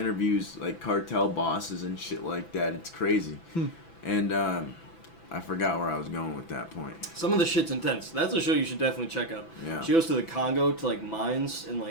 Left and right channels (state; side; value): late; right; 6.0 ms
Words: like cartel bosses and shit like that. It's crazy. And I forgot where I was going with that point. Some of the shit's intense. That's a show you should definitely check out. Yeah. She goes to the Congo to like mines, and